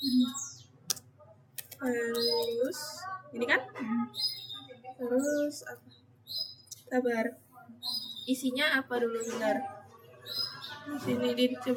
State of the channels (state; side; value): identical; both; correlation 1.00